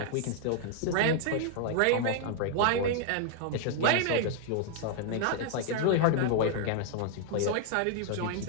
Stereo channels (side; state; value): both; different; correlation 0.00